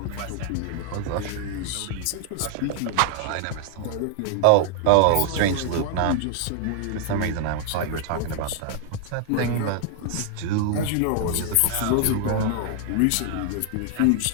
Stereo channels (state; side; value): different; both; correlation 0.00